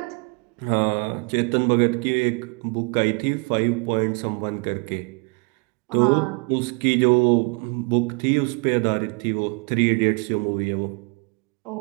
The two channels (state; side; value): quieter; left; 32.2 dB